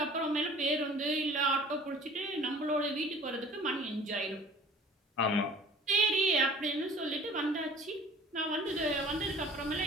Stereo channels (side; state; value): both; normal; correlation 0.47